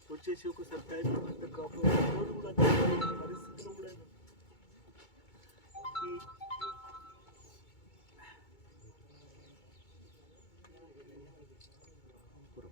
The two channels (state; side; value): late; right; 2.2 ms